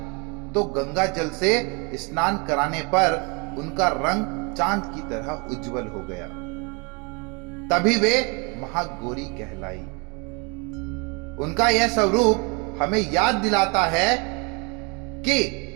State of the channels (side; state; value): left; quieter; 31.5 dB